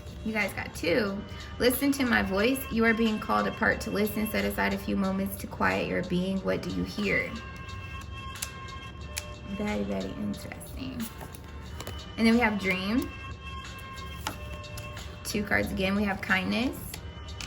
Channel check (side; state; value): both; identical; correlation 1.00